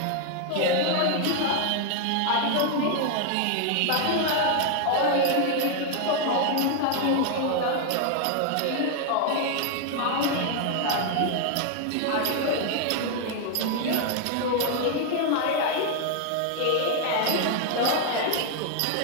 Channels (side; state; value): both; different; correlation 0.00